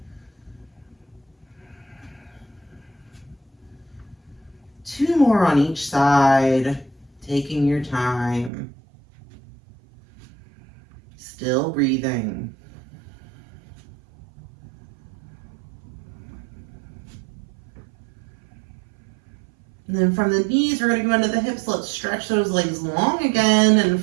Two more on each side, taking your time. Still breathing. And then from the knees, we're going to go into the hips. Let's stretch those legs long again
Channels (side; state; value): left; drops out; at 8.5 s